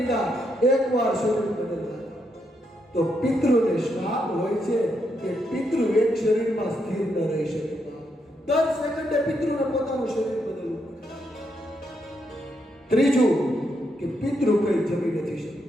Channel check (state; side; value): normal; both; correlation 0.79